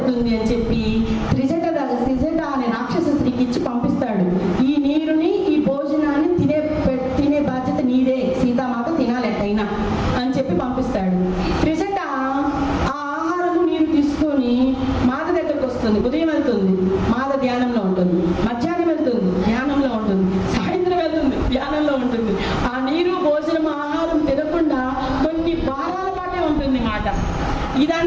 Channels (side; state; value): both; identical; correlation 1.00